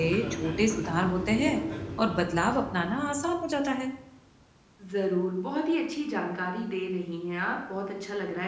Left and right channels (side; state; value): both; identical; correlation 1.00